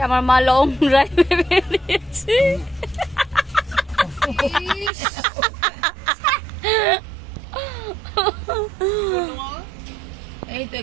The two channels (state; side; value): drops out; left; at 4.9 s